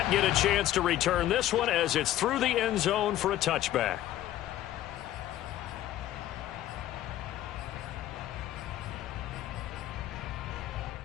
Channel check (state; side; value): quieter; right; 13.4 dB